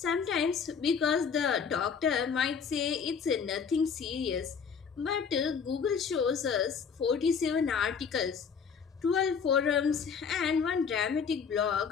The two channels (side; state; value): right; quieter; 6.4 dB